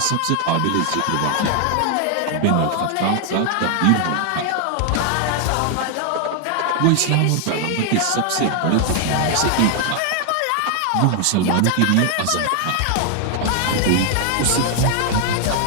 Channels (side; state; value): both; different; correlation 0.00